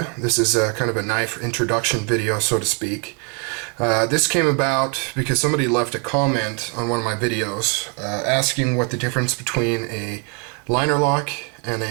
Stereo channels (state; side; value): quieter; left; 34.0 dB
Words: This is kind of a knife introduction video, so to speak. This came about because somebody left a comment on one of my videos asking what the difference between a liner lock and